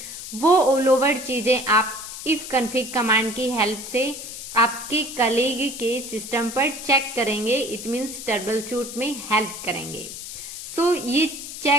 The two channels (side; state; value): left; noise; hiss, 10 dB below the sound